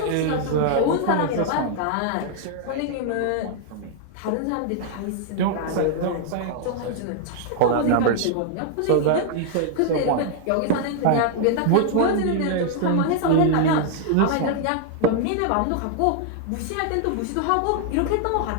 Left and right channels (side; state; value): both; different; correlation 0.00